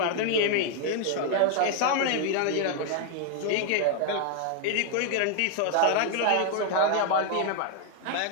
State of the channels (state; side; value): different; both; correlation 0.00